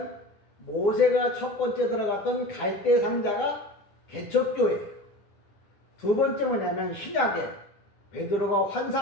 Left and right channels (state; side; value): late; right; 10 ms